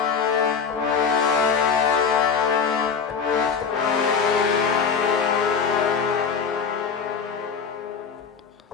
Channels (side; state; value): right; quieter; 6.2 dB